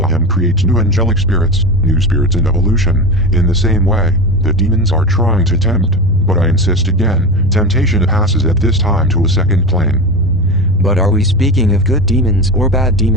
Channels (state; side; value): noise; right; rumble, 15 dB below the sound